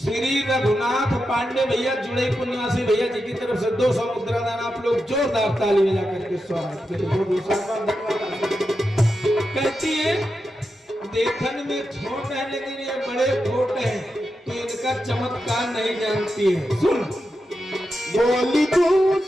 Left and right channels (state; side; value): normal; both; correlation 0.88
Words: रघुनाथ पांडे भैया जुड़ईपुर निवासी भैया जी की तरफ से 200 मुद्रा दान आप लोग जोरदार ताली बजा करके स्वागत करें। कहती है देखने में छोट है लेकिन ये बड़े खोट है, तो इनका चमत्कार नहीं जानती है। सुन बोली